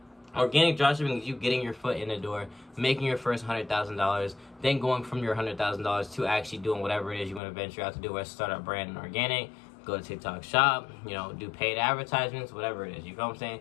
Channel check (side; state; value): right; drops out; at 7.4 s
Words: Organic dropshipping is you getting your foot in the door, making your first $100,000, then going from your $100,000 to actually doing whatever it is you want to venture out to do, whether start a brand in organic, go to TikTok shop, do paid advertisements, whatever it is. You feel what I'm saying?